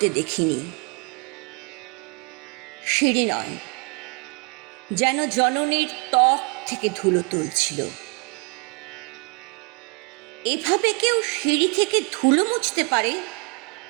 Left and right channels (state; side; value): quieter; left; 31.8 dB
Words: দেখিনি। সিঁড়ি নয়, যেন জননীর ত্বক থেকে ধুলো তুলছিল। এভাবে কেউ সিঁড়ি থেকে ধুলো মুছতে পারে